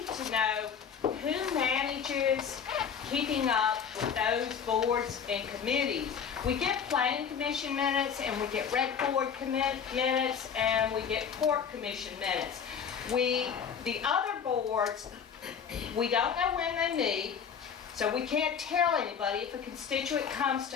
to know who manages keeping up with those boards and committees. We get planning commission minutes and we get rec board minutes and we get court commission minutes. The other boards, we don't know when they meet, so we can't tell anybody. If a constituent comes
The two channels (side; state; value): right; quieter; 7.2 dB